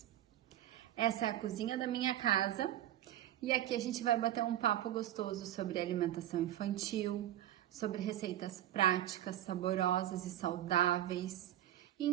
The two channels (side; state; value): left; quieter; 12.6 dB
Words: Essa é a cozinha da minha casa e aqui a gente vai bater um papo gostoso sobre alimentação infantil, sobre receitas práticas, saborosas e saudáveis, e